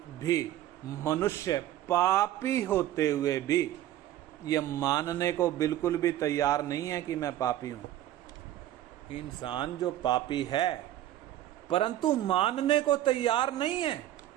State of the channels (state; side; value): quieter; left; 13.0 dB